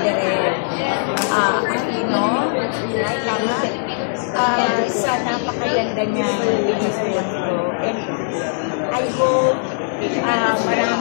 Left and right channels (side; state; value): right; silent; 66 dB below the other